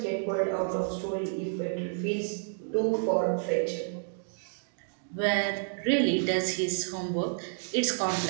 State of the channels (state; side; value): silent; left; digital silence